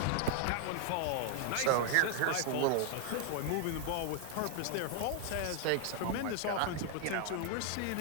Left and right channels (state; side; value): different; both; correlation 0.00